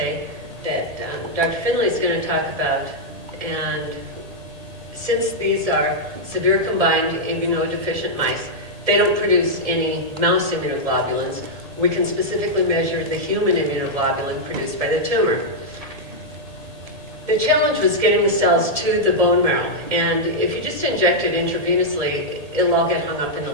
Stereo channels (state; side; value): late; left; 1.7 ms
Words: that Dr. Finley is going to talk about. And since these are severe combined immunodeficient mice, they don't produce any mouse immunoglobulins. We can specifically measure the human immunoglobulin produced by the tumor. The challenge was getting the cells to the bone marrow, and if you just inject it intravenously, it'll all get hung up in the